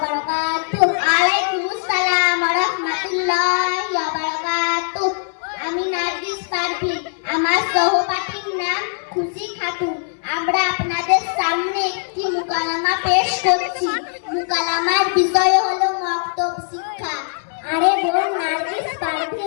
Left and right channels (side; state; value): right; silent; 62 dB below the other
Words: বারাকাতুহু। ওয়ালাইকুমুস সালাম ওয়া রাহমাতুল্লাহি ওয়া বারাকাতুহু। আমি নার্গিস পারভীন, আমার সহপাঠীর নাম খুশি খাতুন। আমরা আপনাদের সামনে একটি মুকালামা পেশ করছি। মুকালামার বিষয় হলো মক্তব শিক্ষা। আরে বোন নার্গিস